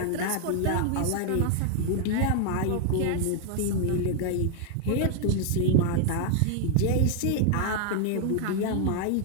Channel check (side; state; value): both; different; correlation 0.00